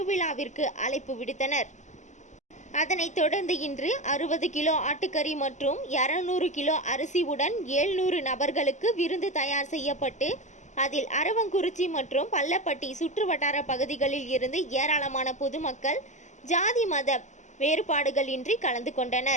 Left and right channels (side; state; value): right; late; 0.34 ms